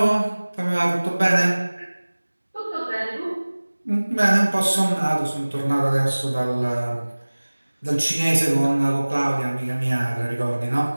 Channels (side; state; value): both; inverted; correlation -1.00